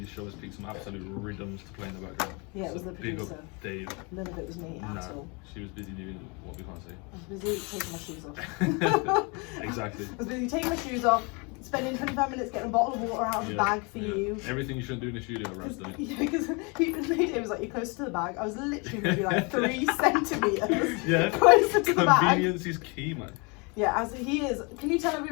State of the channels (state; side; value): quieter; right; 30.7 dB